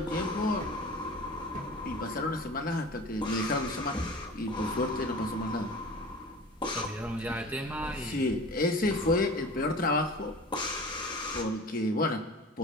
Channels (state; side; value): normal; both; correlation 0.38